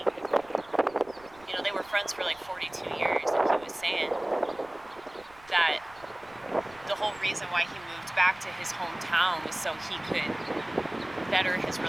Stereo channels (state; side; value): noise; right; rumble, 25 dB below the sound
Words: you know, they were friends for like 42 years, and he was saying that the whole reason why he moved back to his hometown was so he could better his